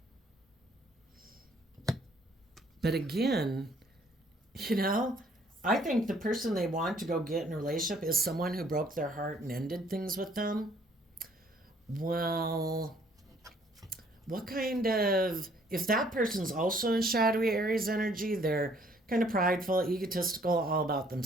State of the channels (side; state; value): both; normal; correlation 0.62